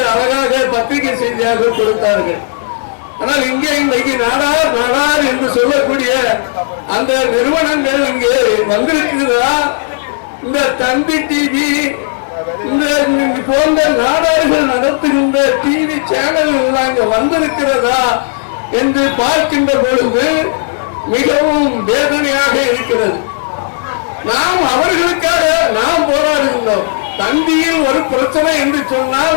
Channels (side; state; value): right; silent; digital silence